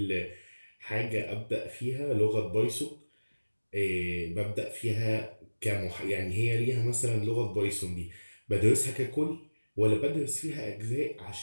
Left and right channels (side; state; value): both; inverted; correlation -1.00